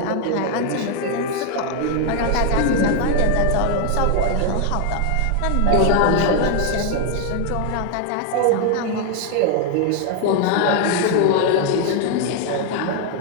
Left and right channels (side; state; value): both; different; correlation 0.01